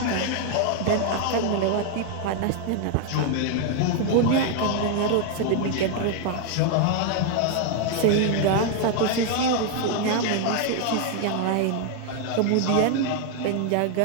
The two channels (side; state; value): both; different; correlation 0.00